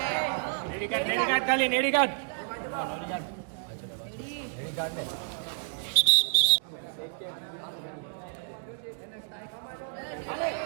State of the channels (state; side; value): silent; left; digital silence